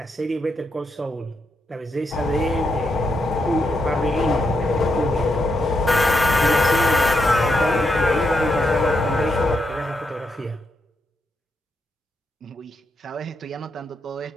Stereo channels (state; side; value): normal; both; correlation 0.81